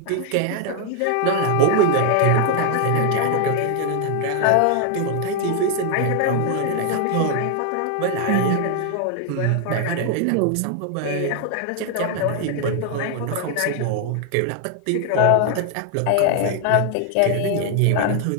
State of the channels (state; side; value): different; both; correlation 0.00